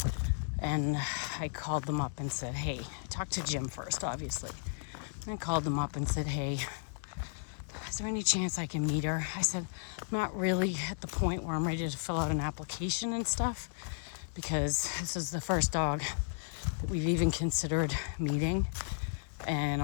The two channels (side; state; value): right; silent; digital silence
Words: And I called them up and said, hey, I talked to Jim first, obviously. And I called them up and said, hey, is there any chance I can meet her? I said, I'm not really at the point where I'm ready to fill out an application and stuff, because this is the first dog that we've even considered meeting. And